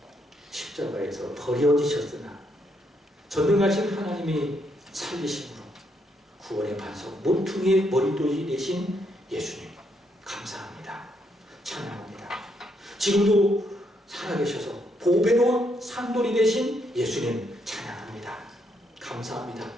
십자가에서 버려지셨으나 전능하신 하나님이 살리심으로 구원의 반석 모퉁이의 머리돌이 되신 예수님 감사합니다. 찬양합니다. 지금도 살아계셔서 보배로운 산돌이 되신 예수님 찬양합니다. 감사합니다.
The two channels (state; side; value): normal; both; correlation 0.75